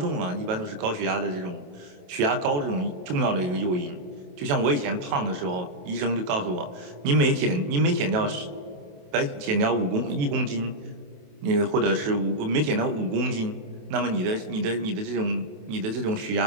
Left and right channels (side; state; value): left; late; 28 ms